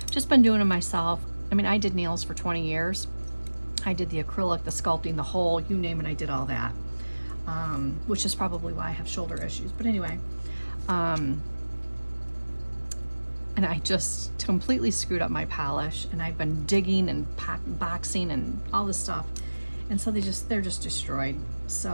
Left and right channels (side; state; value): both; inverted; correlation -1.00